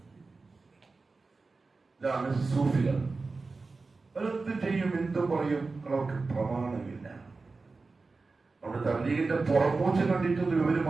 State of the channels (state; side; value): quieter; left; 3.9 dB